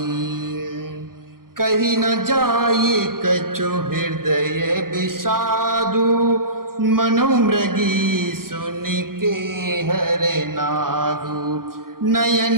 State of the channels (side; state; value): left; late; 0.92 ms